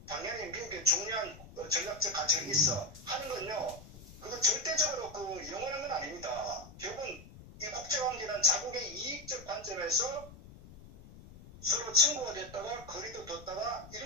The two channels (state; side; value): noise; left; rumble, 18 dB below the sound